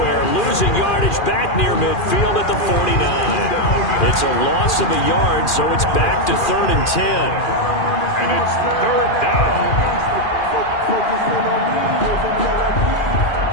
Losing yardage back near midfield at the 49. It's a loss of a yard, so it's back to 3rd and 10. And it's 3rd down.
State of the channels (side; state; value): right; late; 2.4 ms